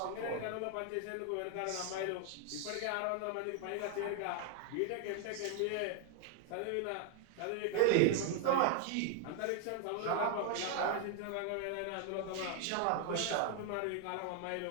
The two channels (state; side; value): different; both; correlation 0.00